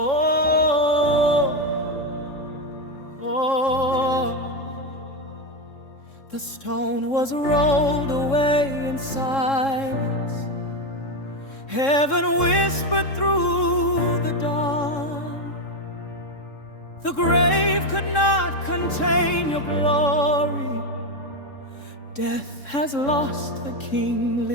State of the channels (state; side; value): late; right; 3.7 ms